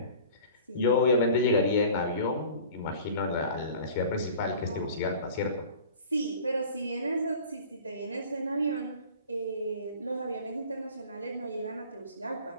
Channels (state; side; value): inverted; both; correlation -0.43